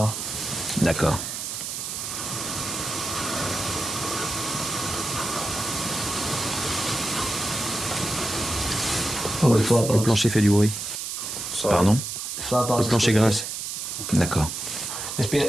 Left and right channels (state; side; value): noise; right; hiss, 5 dB below the sound